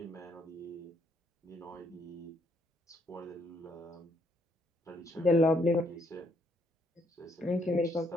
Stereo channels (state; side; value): normal; both; correlation 0.71